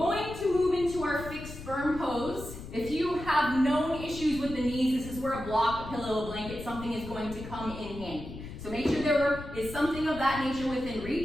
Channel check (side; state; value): left; noise; rumble, 11 dB below the sound